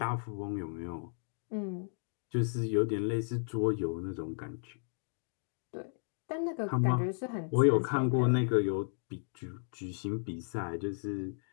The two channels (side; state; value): right; silent; digital silence